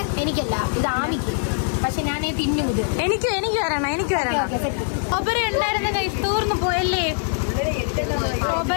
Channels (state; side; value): silent; right; 64 dB below the other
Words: എനിക്കല്ല, ഇത് ആമിക്ക്. പക്ഷെ ഞാൻ തിന്നും. ഇത് എനിക്ക് വരണം. ഒബര ഉണ്ടായിരുന്ന കൈ തീർന്നു പോയല്ലേ?